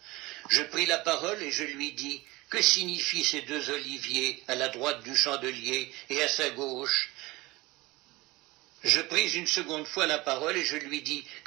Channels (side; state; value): left; quieter; 21.3 dB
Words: Je pris la parole et je lui dis, « Que signifient ces 2 oliviers à la droite du chandelier et à sa gauche ?» Je pris une seconde fois la parole et je lui dis, «